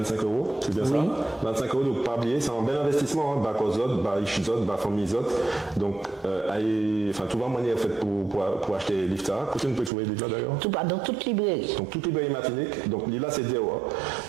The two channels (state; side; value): drops out; left; at 9.9 s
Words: €, c'est bien ça? 25 €, donc pas oublier, c'est un bel investissement, hein, bas Kozot, bas Ishizot, bas Famizot. Donc, tout va manière en fait pour acheter Lifta. Où tu peux trouver Lifta d'ailleurs? Dans toute librairie. Donc, toute librairie Martinique. Donc, là, c'est Dewa.